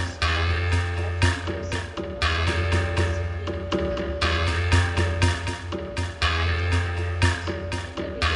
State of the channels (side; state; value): both; identical; correlation 1.00